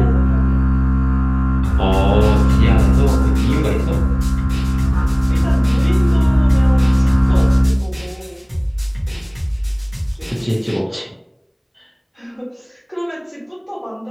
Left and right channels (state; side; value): identical; both; correlation 1.00